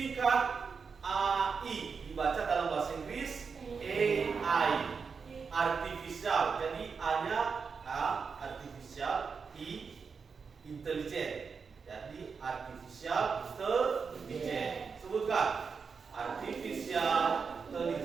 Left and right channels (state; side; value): quieter; left; 5.5 dB